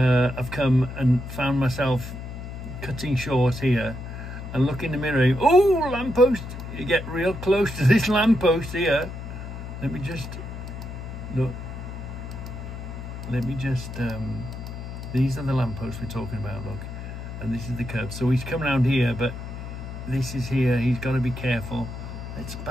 come and found myself cutting short here and look in the mirror, oh, lamppost. You get real close to this lamppost here. Let me just look. Let me just these are the lampposts we're talking about, look, and this is the curb. So he's come around here, but this is here. He's got to be careful. Let's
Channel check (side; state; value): left; noise; hum, 9 dB below the sound